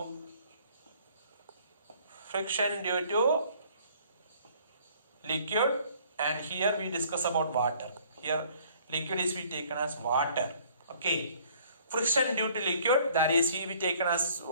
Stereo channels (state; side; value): inverted; both; correlation -0.58